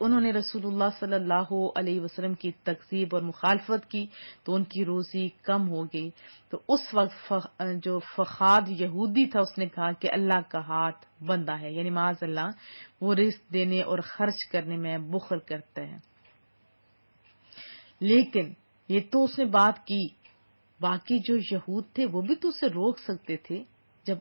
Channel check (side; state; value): both; inverted; correlation -1.00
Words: نے رسول اللہ صلی اللہ علیہ وسلم کی تکذیب اور مخالفت کی تو ان کی روزی کم ہو گئی. تو اس وقت جو فخاد یہودی تھا اس نے کہا کہ اللہ کا ہاتھ بندہ ہے، یعنی معاذ اللہ وہ رزق دینے اور خرچ کرنے میں بخل کرتا ہے. لیکن یہ تو اس نے بات کی، باقی جو یہود تھے وہ بھی تو اسے روک سکتے تھے. جب